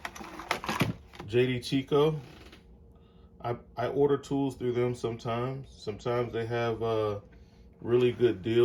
JD Tico, I order tools through them sometimes. Sometimes they have really good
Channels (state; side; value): identical; both; correlation 1.00